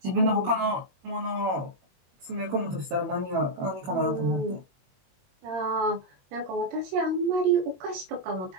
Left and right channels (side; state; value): left; late; 21 ms